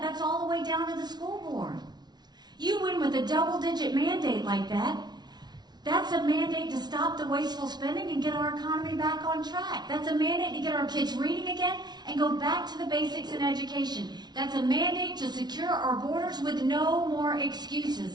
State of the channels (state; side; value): late; left; 0.20 ms